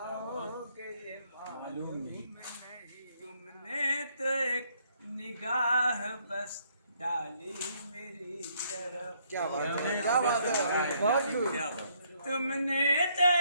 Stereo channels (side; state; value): both; inverted; correlation -0.69